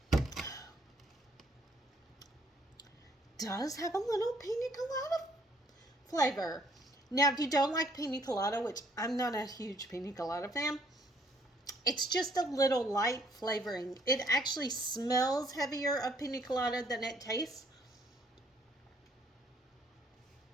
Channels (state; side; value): normal; both; correlation 0.65